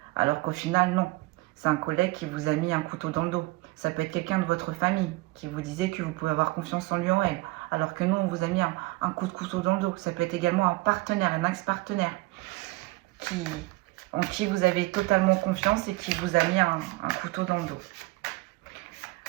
Alors qu'au final, non. C'est un collègue qui vous a mis un couteau dans le dos. Ça peut être quelqu'un de votre famille qui vous disait que vous pouvez avoir confiance en lui ou en elle. Alors que nous, on vous a mis un coup de couteau dans le dos. Ça peut être également un partenaire, un ex-partenaire en qui vous avez totalement confiance et qui vous a mis un couteau dans le dos.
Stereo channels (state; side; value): quieter; left; 21.8 dB